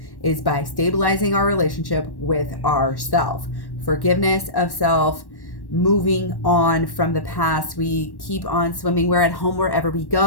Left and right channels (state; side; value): late; right; 1.1 ms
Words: is by stabilizing our relationship with ourself. Forgiveness of self, moving on from the past. We keep on swimming. We're at home wherever we